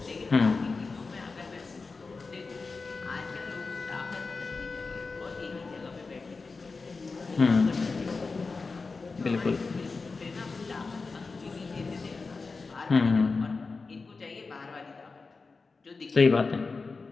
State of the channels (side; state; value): right; quieter; 4.2 dB